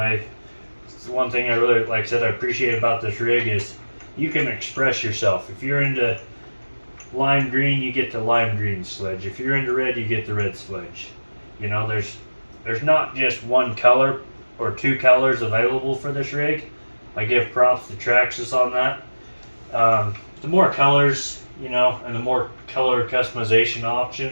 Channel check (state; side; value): inverted; both; correlation -1.00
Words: the one thing I really, like I said, I appreciate about this rig is you can express yourself. If you're into lime green, you get the lime green sledge. If you're into red, you get the red sledge. You know, there's not just one color or two colors available for this rig. I give props to Traxxas on that. The more colors, you know, and the more color customization